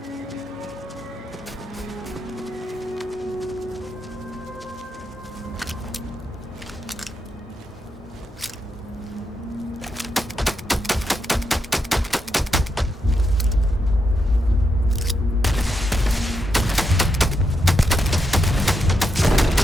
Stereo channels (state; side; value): normal; both; correlation 0.83